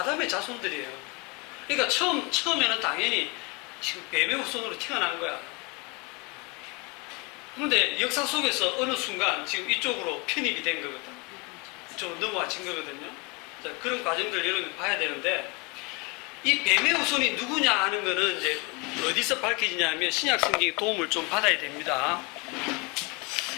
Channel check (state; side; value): quieter; right; 28.9 dB